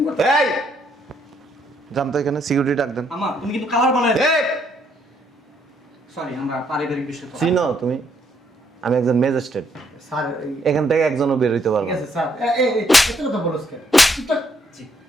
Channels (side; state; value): both; normal; correlation 0.71